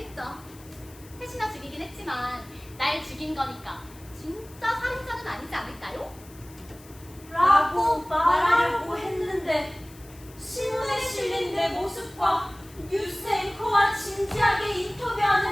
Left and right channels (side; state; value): left; noise; hiss, 22 dB below the sound